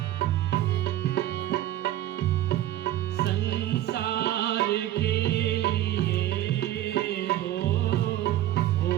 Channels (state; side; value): quieter; left; 13.6 dB